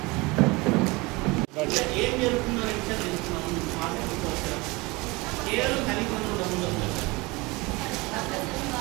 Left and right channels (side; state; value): left; quieter; 24.2 dB